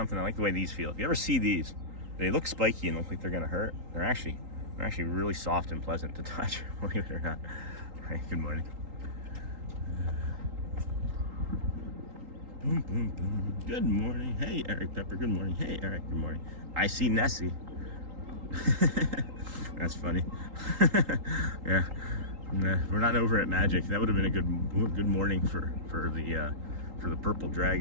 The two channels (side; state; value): left; late; 3.8 ms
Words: I like the way these feel. If you ever see these, they look spiky and look like they're gonna hurt. They're actually really soft and pleasant to touch, believe it or not. Hey, good morning. Boom, boom, boom. Good morning. Hey, Eric Pepper. Good morning. Hey, Eric. Good morning. I see Nessie. That's funny. Yeah. We're not over at Magic. That would have been a good morning for the purple